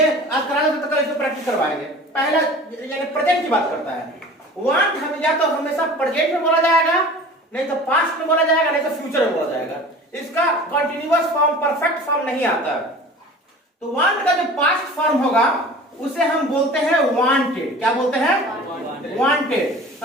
आज करा तो कल इसको प्रैक्टिस करवाएंगे। पहला यानी प्रेजेंट की बात करता है। वांट हम या तो हमेशा प्रेजेंट में बोला जाएगा, नहीं तो पास्ट में बोला जाएगा, नहीं तो फ्यूचर में बोला जाएगा। इसका कंटीन्यूअस फॉर्म, परफेक्ट फॉर्म नहीं आता। तो वांट का जो पास्ट फॉर्म होगा उसे हम बोलते हैं वांटेड। क्या बोलते हैं? वांटेड।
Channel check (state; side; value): normal; both; correlation 0.41